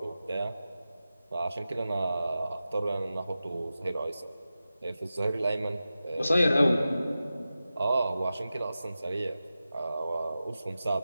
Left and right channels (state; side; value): inverted; both; correlation -0.93